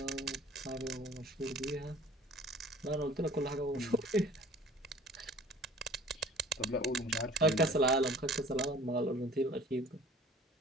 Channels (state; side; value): normal; both; correlation 0.49